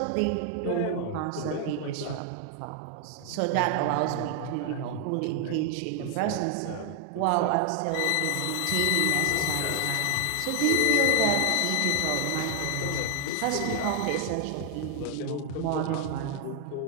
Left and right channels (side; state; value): both; different; correlation 0.00